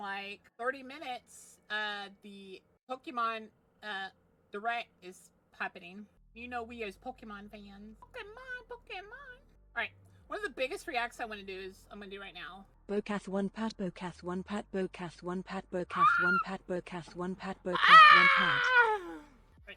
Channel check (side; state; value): both; identical; correlation 1.00